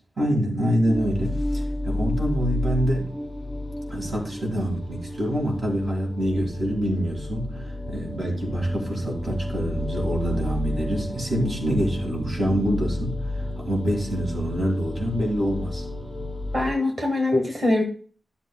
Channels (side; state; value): both; normal; correlation 0.88